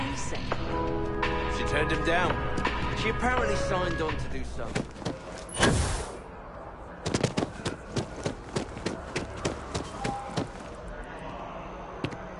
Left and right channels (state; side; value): identical; both; correlation 1.00